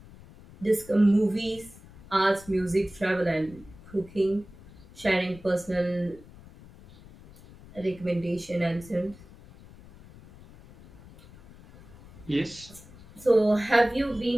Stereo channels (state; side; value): noise; left; rumble, 21 dB below the sound